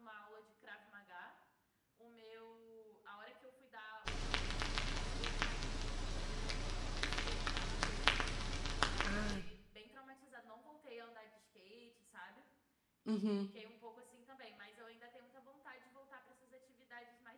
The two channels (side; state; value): both; identical; correlation 1.00